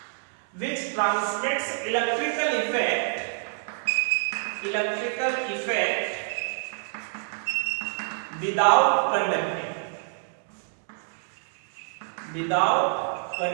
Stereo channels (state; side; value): silent; left; digital silence